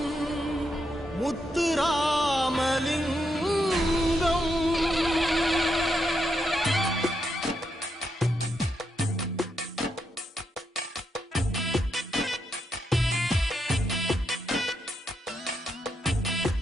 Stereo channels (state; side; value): normal; both; correlation 0.82